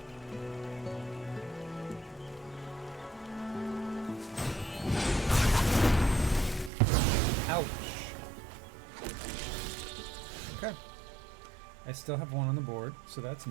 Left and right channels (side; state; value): left; drops out; at 6.7 s